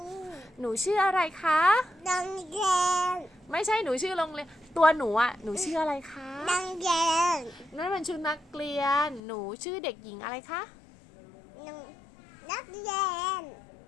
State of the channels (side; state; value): right; drops out; at 9.2 s